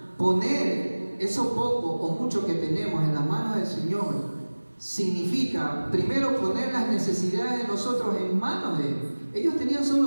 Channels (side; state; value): both; inverted; correlation -1.00